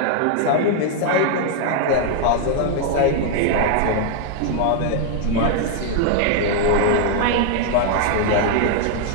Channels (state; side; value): different; both; correlation 0.00